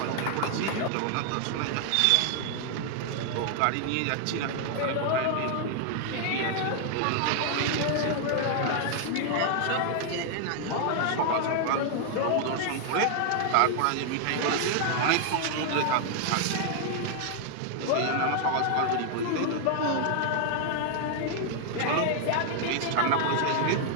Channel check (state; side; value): different; both; correlation 0.00